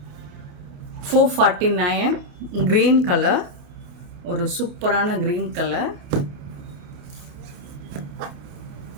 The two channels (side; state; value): left; late; 28 ms